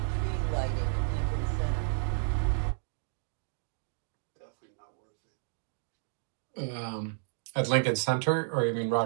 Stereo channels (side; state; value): left; silent; digital silence